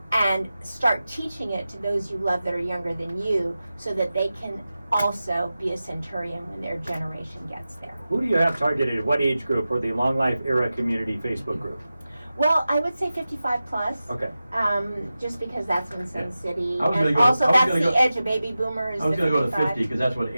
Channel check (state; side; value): inverted; both; correlation -0.94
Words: and start teaching it to those you love that are younger than you, so that they can also be a centurion when their generation gets there. Who do you have targeted? What age group for the Long Life Era Community Facebook group? Well, I would say 55 plus. Okay. Just because that's in Sun Yeah. City, I was gonna and go- also I was that's gonna the go- edge of baby boomers. I was the going to go to 55. 50 because that's what